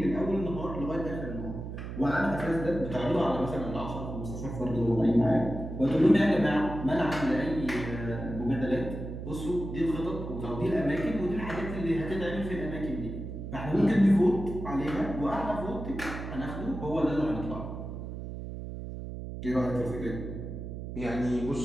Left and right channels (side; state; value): right; noise; hum, 8 dB below the sound